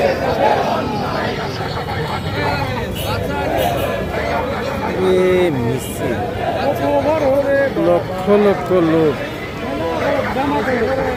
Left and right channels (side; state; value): both; identical; correlation 1.00